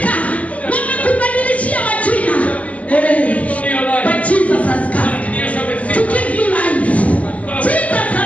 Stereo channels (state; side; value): late; right; 0.070 ms